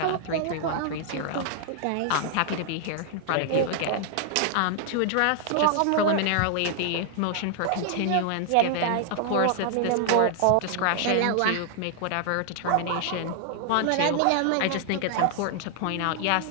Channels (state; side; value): different; both; correlation 0.00